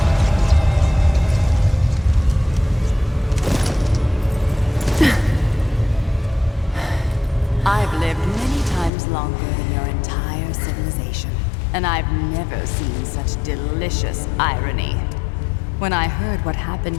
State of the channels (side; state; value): right; drops out; at 8.9 s